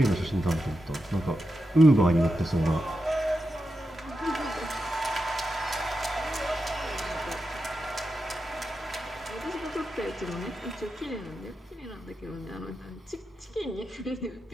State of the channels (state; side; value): normal; both; correlation 0.89